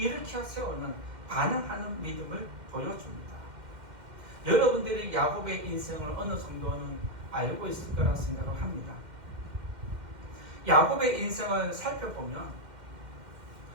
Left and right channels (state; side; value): late; left; 2.1 ms